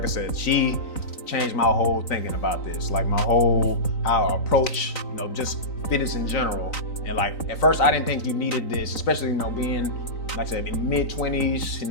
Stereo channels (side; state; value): right; late; 3.9 ms